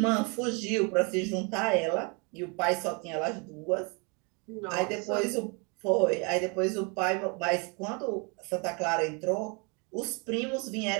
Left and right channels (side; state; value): left; quieter; 32.8 dB